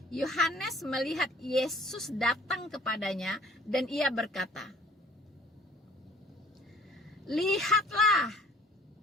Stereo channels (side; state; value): both; normal; correlation 0.53